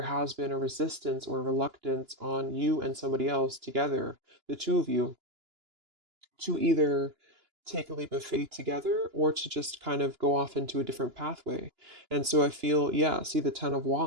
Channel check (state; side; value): late; left; 2.9 ms